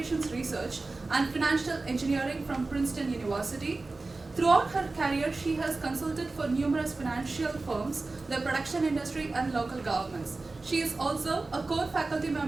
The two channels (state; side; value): quieter; left; 3.5 dB